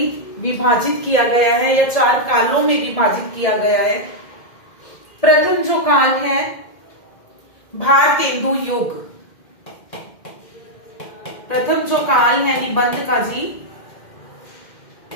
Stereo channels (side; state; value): right; late; 2.1 ms